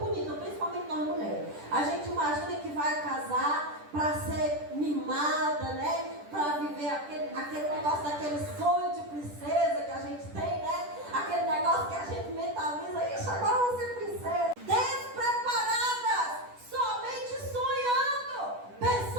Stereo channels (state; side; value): late; left; 10 ms